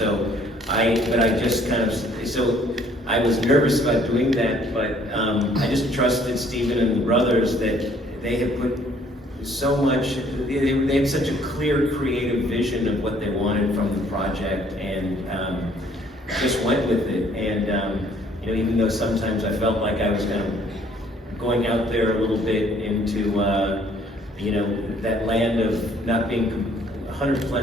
but I just kind of, so I was nervous about doing that, but I just trusted Stephen and the brothers that they had put so much, they had such a clear creative vision of what they wanted from the project, and just went with it. And you know, even though sometimes I felt like I was kind of going out there a little bit into you know, that land of not being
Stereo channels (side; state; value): both; normal; correlation 0.61